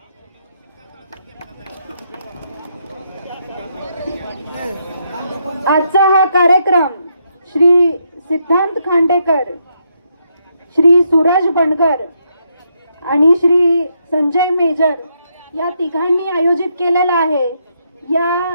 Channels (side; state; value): both; inverted; correlation -0.77